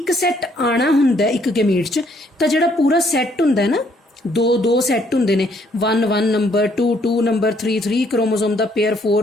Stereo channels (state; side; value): normal; both; correlation 0.67